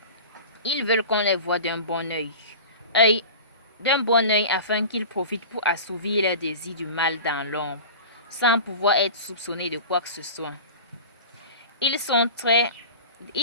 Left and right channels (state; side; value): inverted; both; correlation -0.35